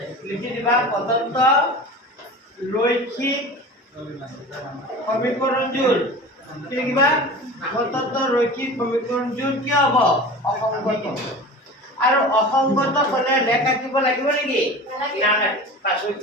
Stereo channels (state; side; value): normal; both; correlation 0.35